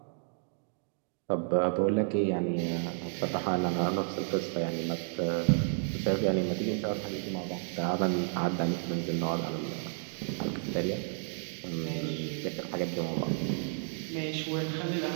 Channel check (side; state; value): left; silent; digital silence